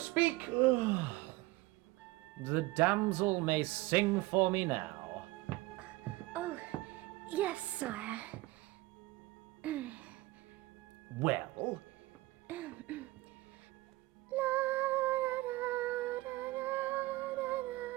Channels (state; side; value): quieter; left; 19.9 dB